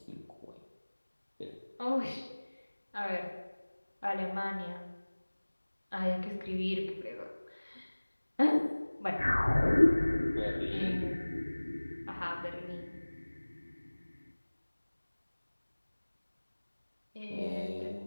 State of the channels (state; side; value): inverted; both; correlation -1.00